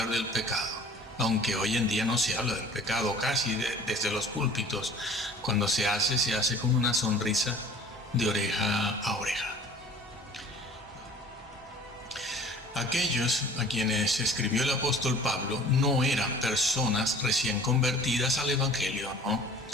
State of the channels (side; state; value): both; normal; correlation 0.47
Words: del pecado, aunque hoy en día no se habla del pecado casi desde los púlpitos. Cuando se hace con una sonrisa de oreja a oreja. Aquellos a quienes escribió el apóstol Pablo no eran personas recién convertidas al Evangelio,